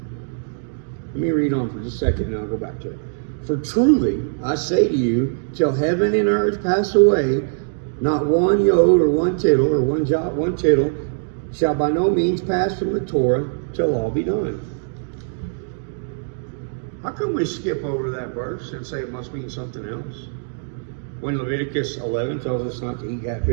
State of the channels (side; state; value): left; silent; digital silence